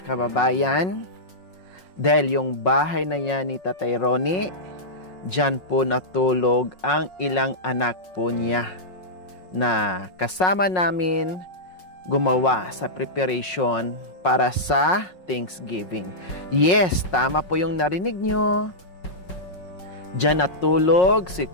kababayan dahil yung bahay na yan ni Tatay Ronnie, dyan po natulog ang ilang anak po niya na kasama namin gumawa sa preparation para sa Thanksgiving. Yes, tama po yung narinig nyo. Diyan natulog si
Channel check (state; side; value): late; right; 5.5 ms